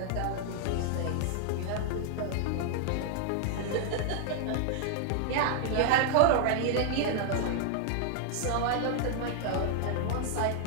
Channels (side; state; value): both; different; correlation 0.00